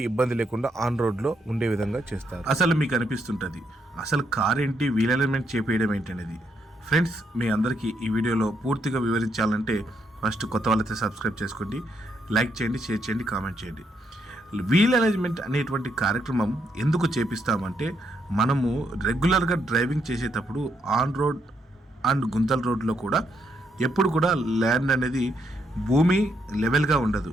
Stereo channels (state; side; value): normal; both; correlation 0.76